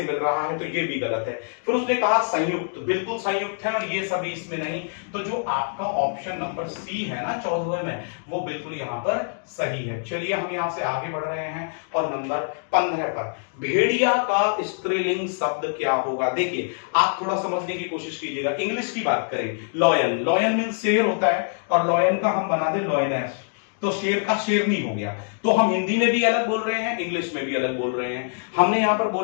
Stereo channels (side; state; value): right; silent; digital silence